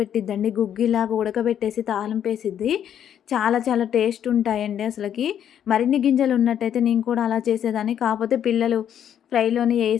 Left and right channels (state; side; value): quieter; right; 9.6 dB